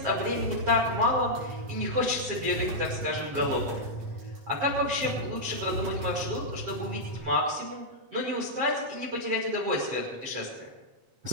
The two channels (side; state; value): left; late; 7.8 ms